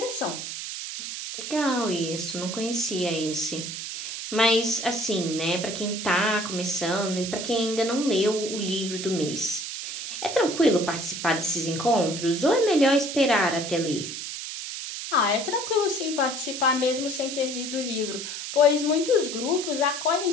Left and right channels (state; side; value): noise; right; hiss, 6 dB below the sound